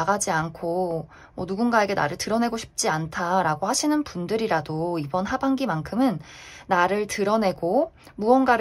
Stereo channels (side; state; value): both; identical; correlation 1.00